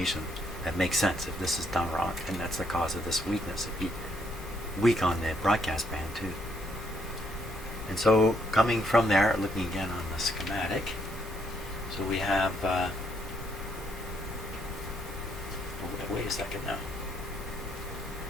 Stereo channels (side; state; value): both; normal; correlation 0.72